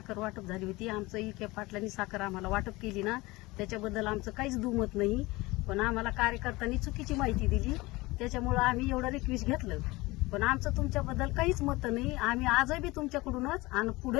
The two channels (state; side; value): quieter; right; 21.5 dB